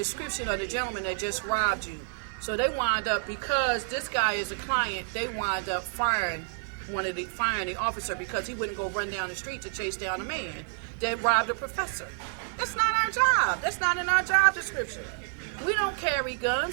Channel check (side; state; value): left; silent; 59 dB below the other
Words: of the gentleman that just robbed you. So they wind up, because this guy is a client, they wind up firing the officer because he wouldn't go run down the street to chase down a man that robbed a professor. That's not our job. That's not in our job description. We don't carry